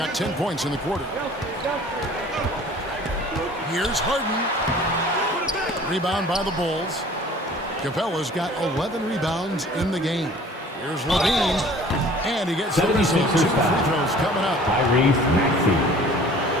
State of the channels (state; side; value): normal; both; correlation 0.49